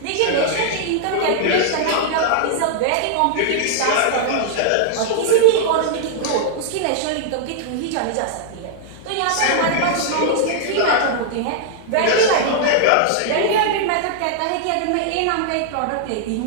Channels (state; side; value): different; both; correlation -0.01